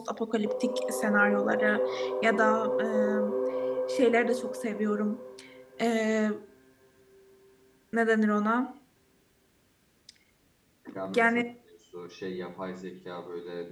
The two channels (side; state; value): both; identical; correlation 1.00